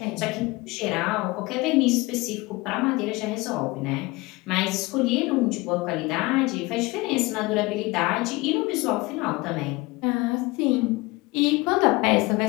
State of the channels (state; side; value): quieter; right; 22.8 dB